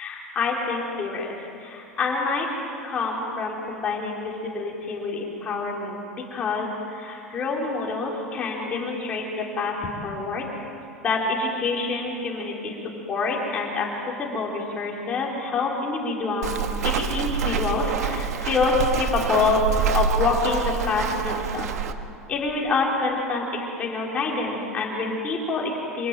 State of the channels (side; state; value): both; normal; correlation 0.30